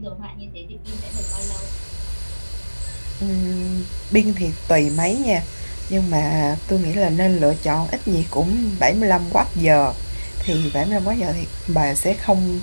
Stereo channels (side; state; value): both; inverted; correlation -1.00